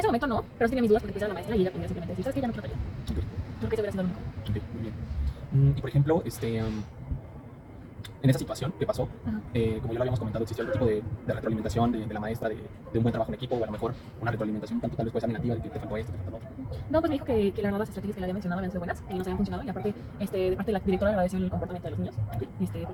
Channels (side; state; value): both; identical; correlation 1.00